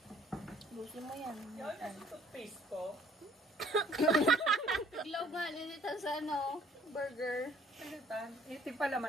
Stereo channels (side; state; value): both; normal; correlation 0.58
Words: Busin mo yan. Toothpaste ko. Iglaw nga, lilitan sa ano, burger. Ano tan? Itig pa